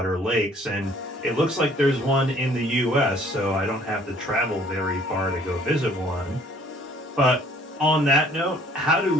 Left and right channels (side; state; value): both; normal; correlation 0.58